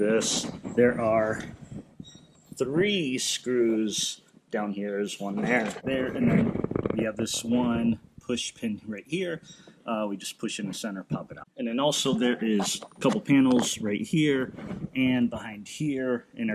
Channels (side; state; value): both; identical; correlation 1.00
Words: There are 3 screws down here. There's one there, and then we have this one push pin right here. We just push in the center, pop it out. And then also there is a couple panels right here and behind here, and